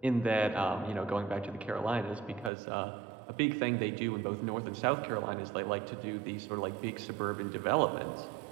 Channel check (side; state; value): left; drops out; at 2.5 s